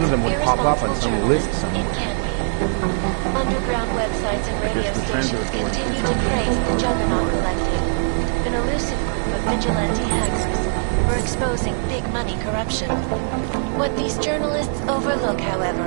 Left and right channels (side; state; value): left; silent; 63 dB below the other